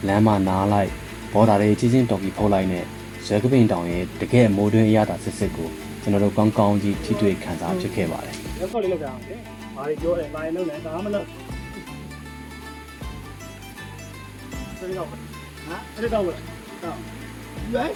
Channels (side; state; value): both; identical; correlation 1.00